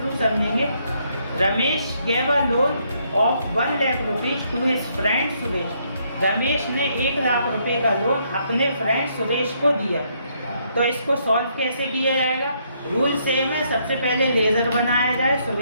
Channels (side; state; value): both; inverted; correlation -0.72